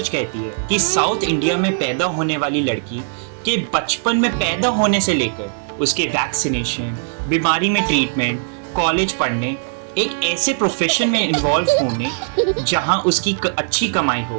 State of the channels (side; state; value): left; silent; 62 dB below the other